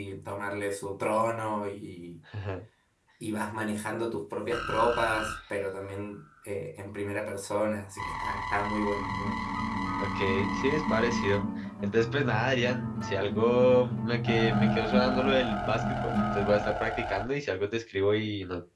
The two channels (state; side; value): identical; both; correlation 1.00